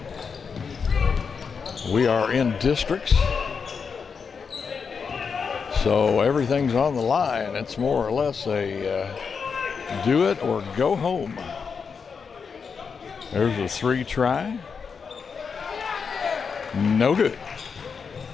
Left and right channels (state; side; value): quieter; right; 5.8 dB